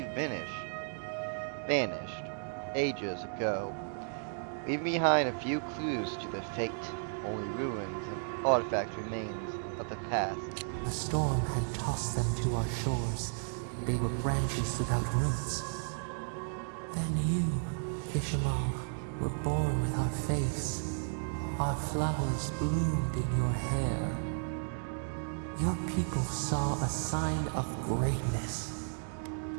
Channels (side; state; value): left; silent; digital silence